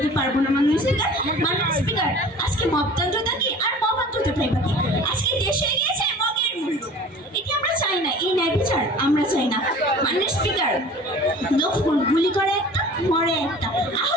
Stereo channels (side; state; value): both; normal; correlation 0.43